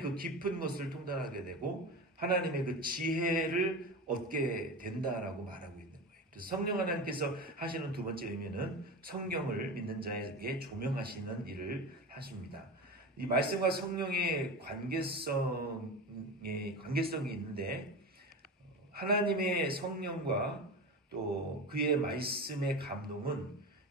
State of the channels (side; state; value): both; normal; correlation 0.26